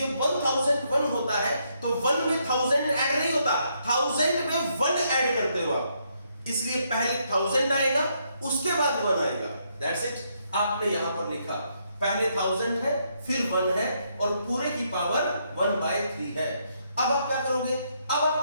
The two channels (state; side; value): inverted; both; correlation -0.75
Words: 1001 होता है तो 1 में 1000 ऐड नहीं होता, 1000 में 1 ऐड करते हो आप। इसलिए पहले 1000 आएगा, उसके बाद 1 आएगा। That's it. आपने यहां पर लिखा पहले 1000 है, फिर 1 है, और पूरे की पावर 1/3 है। अब आप क्या करोगे? अब